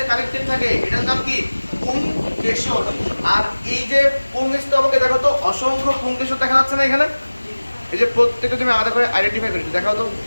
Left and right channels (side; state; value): both; inverted; correlation -1.00